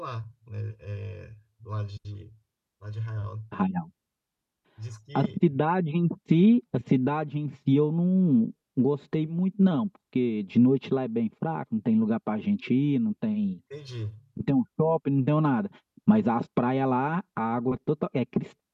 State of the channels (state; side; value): identical; both; correlation 1.00